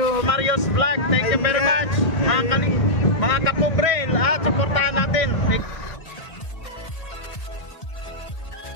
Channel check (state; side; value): late; right; 1.6 ms